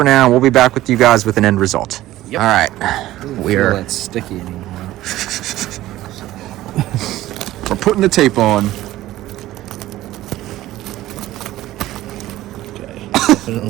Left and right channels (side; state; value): left; quieter; 15.4 dB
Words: now. We'll be back with you guys with an end result. Yep. All right. We're It's sticky anymore. putting the tape on. Okay.